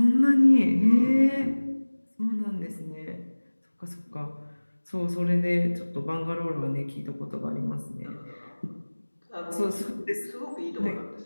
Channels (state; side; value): inverted; both; correlation -1.00